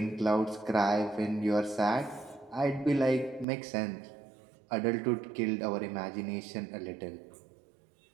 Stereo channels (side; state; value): left; drops out; at 3.5 s